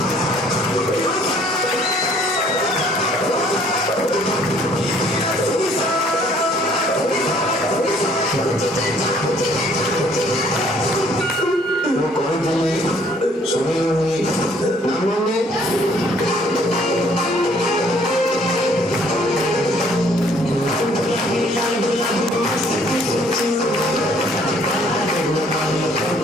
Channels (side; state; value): both; normal; correlation 0.61